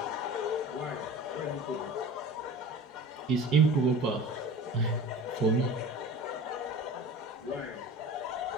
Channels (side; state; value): both; normal; correlation 0.37